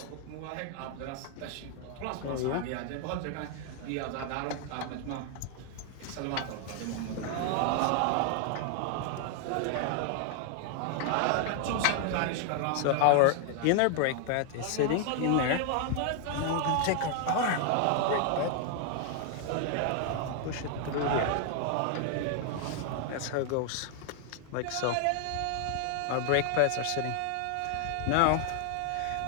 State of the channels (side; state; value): both; different; correlation 0.00